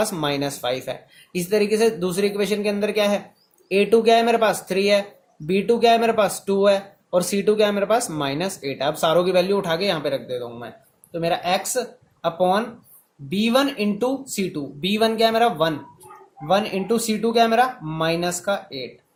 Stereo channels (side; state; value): both; identical; correlation 1.00